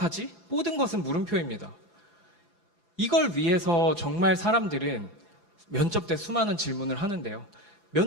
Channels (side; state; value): right; late; 4.8 ms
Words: 모든 것은 물음표입니다. 이걸 위해서 정말 사람들은 면접 때 수많은 질문을 하는데요.